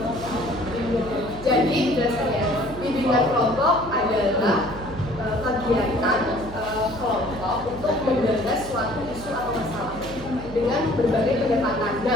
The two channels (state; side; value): noise; right; hum, 13 dB below the sound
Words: Jadi jelaskan ya. Bimbingan kelompok adalah kegiatan kelompok untuk menggagas suatu isu atau masalah dengan berbagai pendekatan.